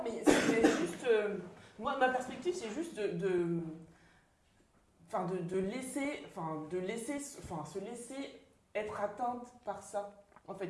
mais c'est juste. Moi, ma perspective, c'est juste de se laisser être atteinte par ça. En fait,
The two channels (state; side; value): identical; both; correlation 1.00